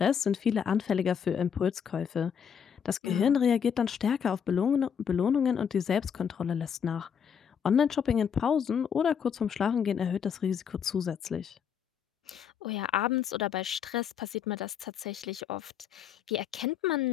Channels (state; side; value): quieter; right; 7.6 dB